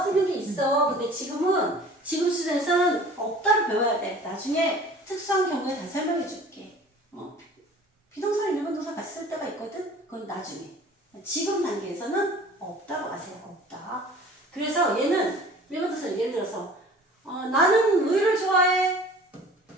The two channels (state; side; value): normal; both; correlation 0.46